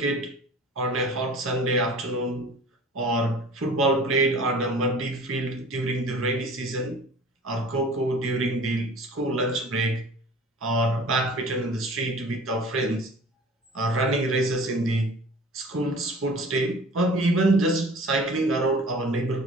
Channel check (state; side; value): normal; both; correlation 0.43